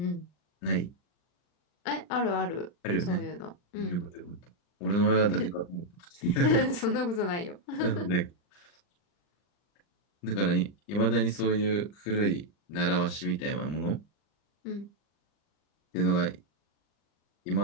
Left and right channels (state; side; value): late; right; 40 ms